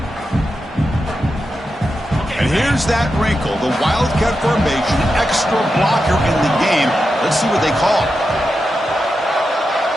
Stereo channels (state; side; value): normal; both; correlation 0.89